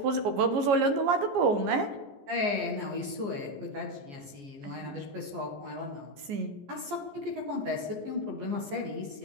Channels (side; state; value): left; late; 14 ms